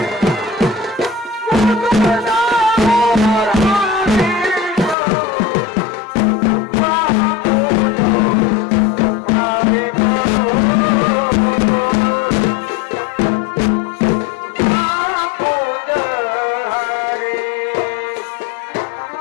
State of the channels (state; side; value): drops out; right; at 5.0 s